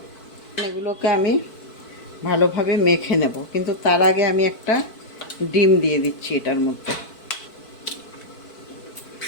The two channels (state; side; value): late; right; 4.5 ms